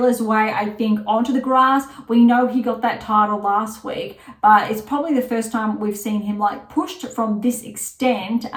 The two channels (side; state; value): both; identical; correlation 1.00